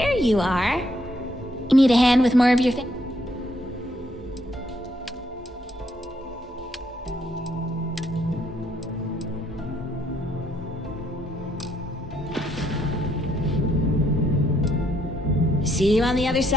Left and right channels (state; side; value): normal; both; correlation 0.72